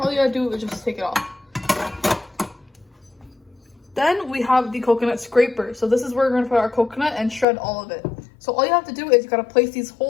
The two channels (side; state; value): right; drops out; at 7.5 s